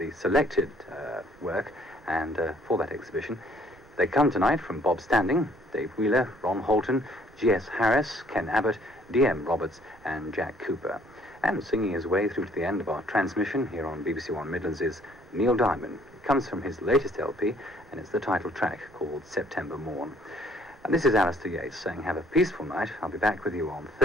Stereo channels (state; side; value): noise; right; rumble, 27 dB below the sound